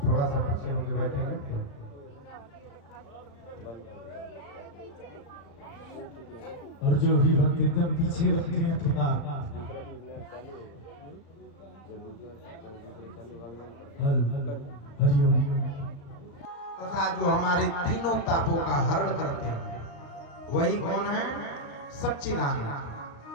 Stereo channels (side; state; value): right; late; 35 ms